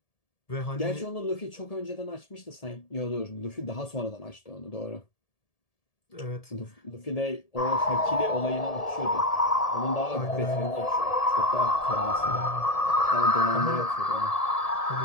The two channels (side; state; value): right; late; 1.7 ms